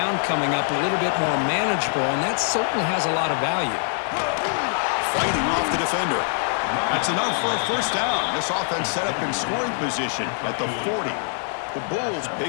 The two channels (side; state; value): right; silent; 63 dB below the other